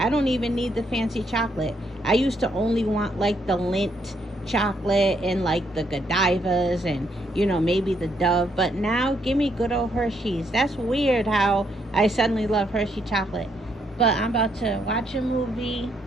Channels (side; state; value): both; normal; correlation 0.74